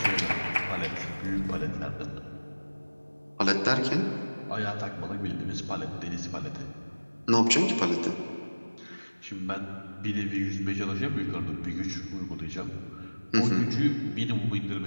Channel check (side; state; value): both; inverted; correlation -1.00